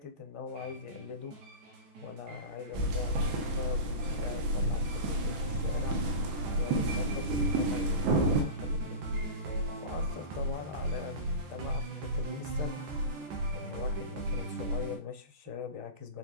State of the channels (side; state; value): left; late; 15 ms